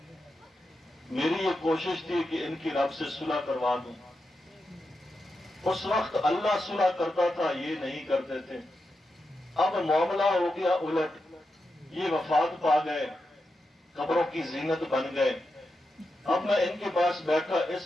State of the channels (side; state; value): both; normal; correlation 0.88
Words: میری یہ کوشش تھی کہ ان کی رب سے صلح کروا دوں. اس وقت اللہ صلح کرتا تھا، یہ نہیں کرتے تھے. اب معاملہ ہو گیا الٹ، یہ وفات پا گئے، قبروں کی زینت بن گئے. اب میں ان کے پاس بیٹھا